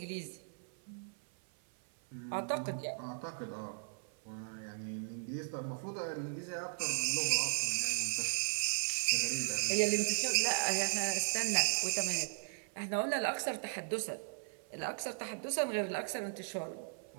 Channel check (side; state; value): left; silent; 53 dB below the other